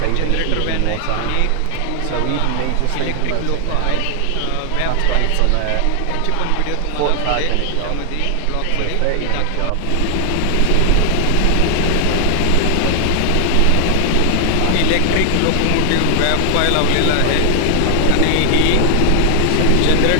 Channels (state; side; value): different; both; correlation 0.00